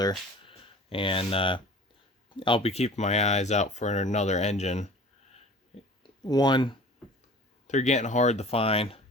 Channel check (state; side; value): normal; both; correlation 0.44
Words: And I'll be keeping my eyes out for another engine. One, they're getting hard to find.